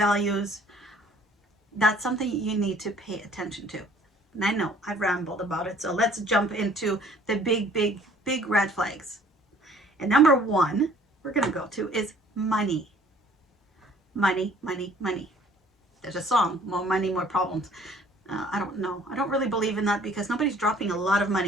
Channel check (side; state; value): both; normal; correlation 0.56